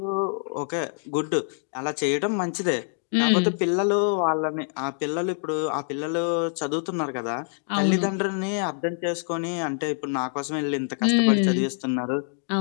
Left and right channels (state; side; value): silent; right; digital silence